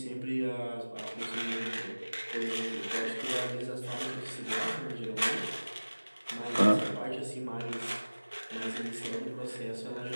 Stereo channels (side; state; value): both; inverted; correlation -1.00